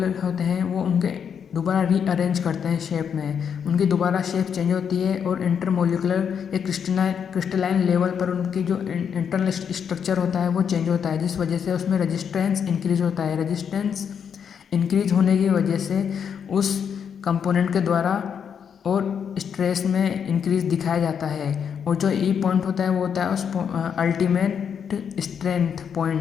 होते हैं वो उनके दोबारा रीअरेंज करते हैं शेप में, उनकी दोबारा शेप चेंज होती है और इंटरमोलिकुलर या क्रिस्टलाइन लेवल पर उनकी जो इंटरनल स्ट्रक्चर होता है वो चेंज होता है, जिस वजह से उसमें रेजिस्टेंस इंक्रीज होता है। रेजिस्टेंस इंक्रीज होने की वजह से उस कंपोनेंट के द्वारा और स्ट्रेस में इंक्रीज दिखाया जाता है, और जो ई पॉइंट होता है वो होता है उस अल्टीमेट स्ट्रेंथ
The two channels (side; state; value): right; quieter; 7.5 dB